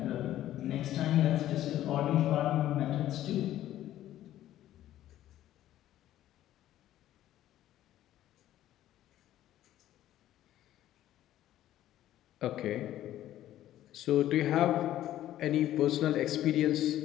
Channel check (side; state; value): right; quieter; 13.1 dB